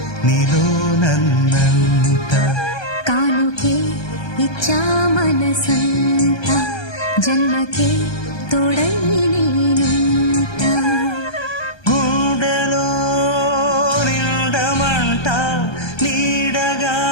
నీలో నన్నంట కానుకే ఇచ్చా మనసంత జన్మకే తోడై నేనుంట గుండెలో నిండమంట నీడగా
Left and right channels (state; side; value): late; right; 1.2 ms